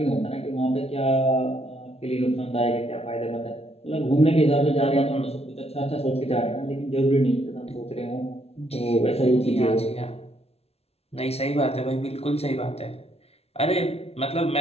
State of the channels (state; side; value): late; right; 0.30 ms